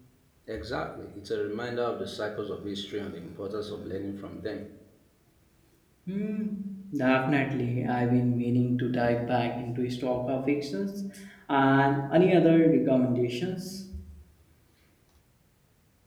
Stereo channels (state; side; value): identical; both; correlation 1.00